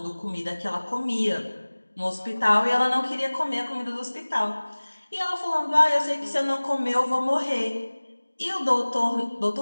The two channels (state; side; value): inverted; both; correlation -1.00